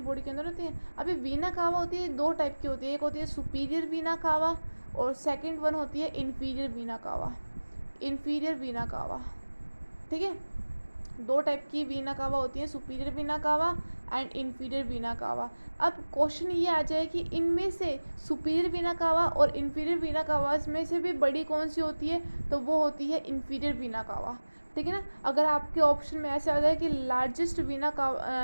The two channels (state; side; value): inverted; both; correlation -1.00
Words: के अंदर होती हैं। अभी वीना कावा होती है, दो टाइप की होती है, एक होती है सुपीरियर वीना कावा और सेकंड वन होती है इन्फीरियर वीना कावा। इन्फीरियर वीना कावा, ठीक है। दो टाइप की वीना कावा होती है, सुपीरियर वीना कावा एंड इन्फीरियर वीना कावा। अब क्वेश्चन ये आ जाए कि इनमें से सुपीरियर वीना कावा और इन्फीरियर वीना कावा में से भी बड़ी कौन सी होती है, तो वो होती है इन्फीरियर वीना कावा, ठीक है ना। अगर आपके ऑप्शन में ऐसे आ जाए कि लार्जेस्ट